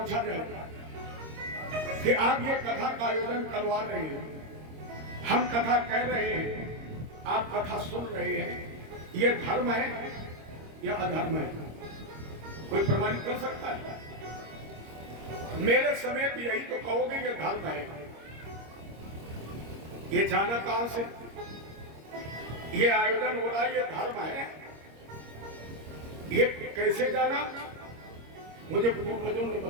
जाए कि आप ये कथा का आयोजन करवा रहे हैं, हम कथा कह रहे हैं, आप कथा सुन रहे हैं, ये धर्म है या अधर्म है? कोई प्रमाणित कर सकता है? मेरे समेत यही तो कहोगे ये धर्म है। ये जाना कहां से? ये आयोजन हो रहा है, ये धर्म है, ये कैसे जाना? मुझे पूर्वजों ने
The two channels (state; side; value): late; left; 26 ms